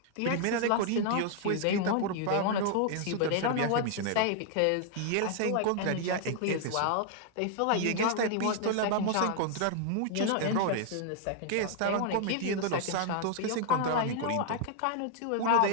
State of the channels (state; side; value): different; both; correlation 0.00